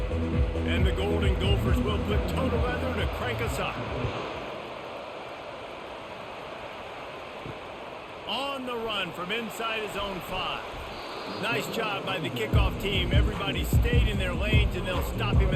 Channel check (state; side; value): identical; both; correlation 1.00